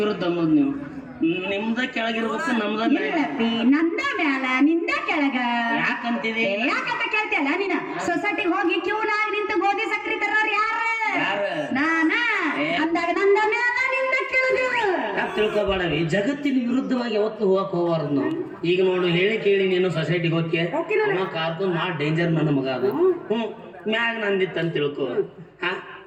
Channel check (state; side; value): identical; both; correlation 1.00